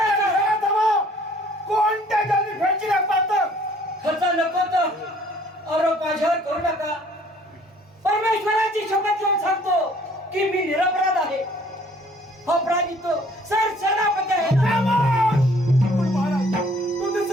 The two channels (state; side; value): normal; both; correlation 0.58